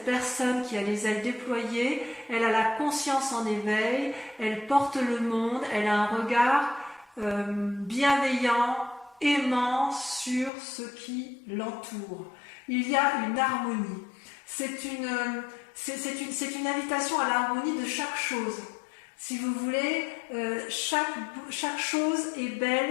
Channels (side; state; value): right; drops out; at 10.5 s